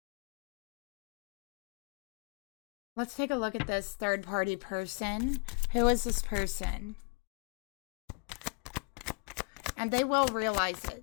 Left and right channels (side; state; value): right; quieter; 31.9 dB